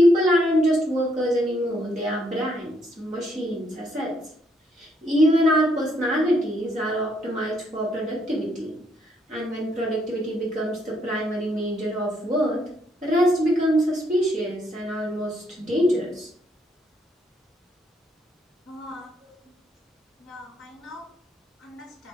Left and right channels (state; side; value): normal; both; correlation 0.72